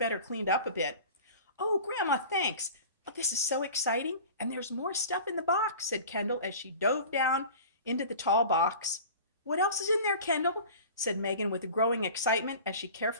cleaned up a bit. Oh, Grandma, thanks. Oh, this is so exciting. And there's more stuff in the box, said Kendall as she dove down into the tall box. What else is in there, Kendall? Said Megan with growing excitement as she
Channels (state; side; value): inverted; both; correlation -0.40